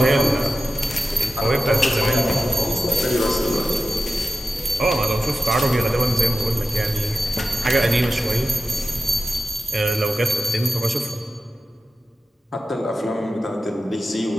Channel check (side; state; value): both; normal; correlation 0.92